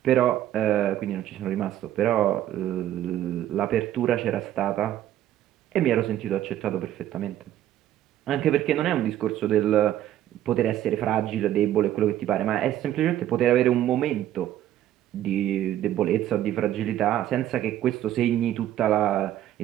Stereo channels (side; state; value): left; quieter; 12.3 dB